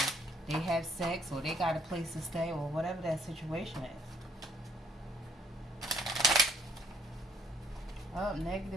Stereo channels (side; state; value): both; normal; correlation 0.65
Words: they have sex, or they got a place to stay, or whatever that situation is. Oh,